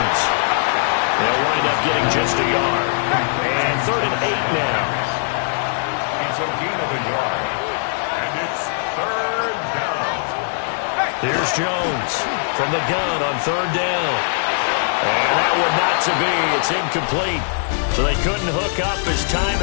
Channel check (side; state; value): right; silent; digital silence